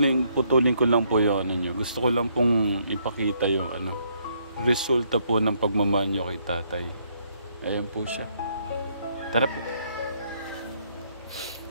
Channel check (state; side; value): inverted; both; correlation -0.71